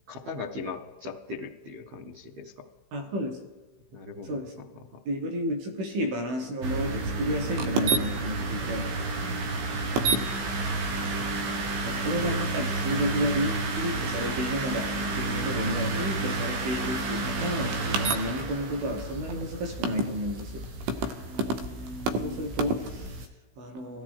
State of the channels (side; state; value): left; late; 16 ms